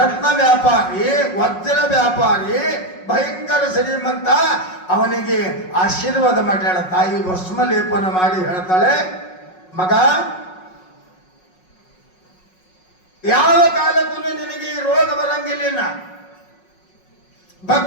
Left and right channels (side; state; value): right; late; 5.5 ms